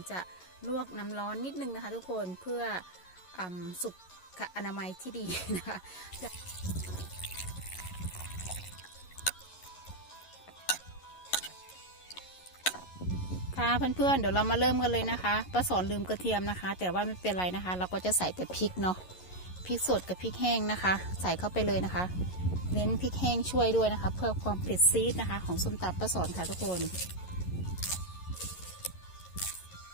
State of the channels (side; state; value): right; late; 11 ms